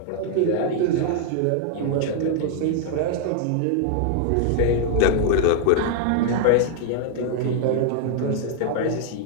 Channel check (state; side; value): different; both; correlation 0.00